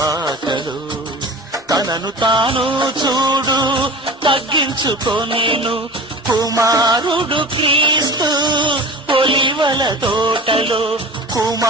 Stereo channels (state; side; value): normal; both; correlation 0.36